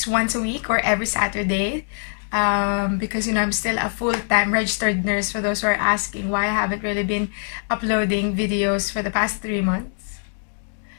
once a week or every Saturday, because you know I'm still a full-time registered nurse, for those who are asking why I haven't really been uploading videos for the past 3 months.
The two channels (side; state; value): right; silent; 64 dB below the other